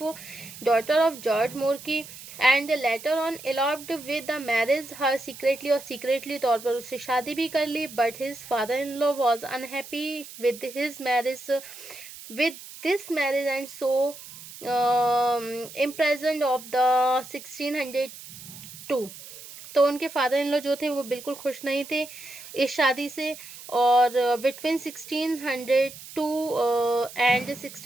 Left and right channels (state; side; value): noise; right; hiss, 15 dB below the sound